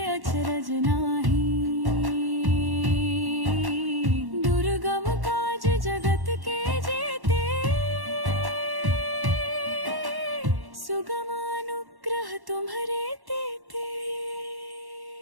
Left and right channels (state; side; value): late; left; 1.1 ms